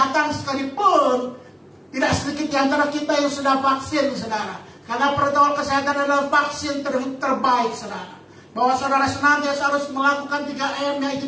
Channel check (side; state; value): both; identical; correlation 1.00